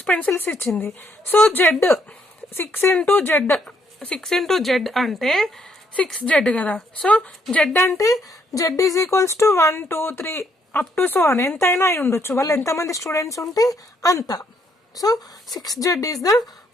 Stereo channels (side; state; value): both; normal; correlation 0.71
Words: pencils ఇచ్చింది. సో Z 6 into Z అంటే 6Z కదా. సో Z అంటే Z is equals to 1 2 3 up to so అని ఎంతైనా అయి ఉండొచ్చు. వాళ్ళు ఎంతమంది స్టూడెంట్స్ ఉంటే అంత. So 6Z is the